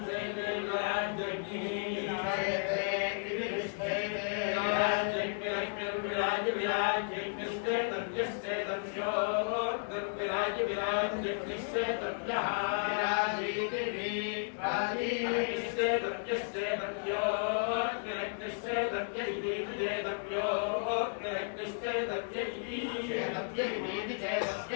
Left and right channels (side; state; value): right; silent; digital silence